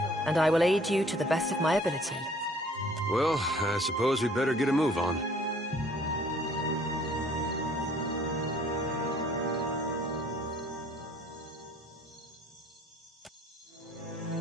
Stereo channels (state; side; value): normal; both; correlation 0.56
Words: and I will aid you to the best of my ability. Well, I suppose we better get a move on.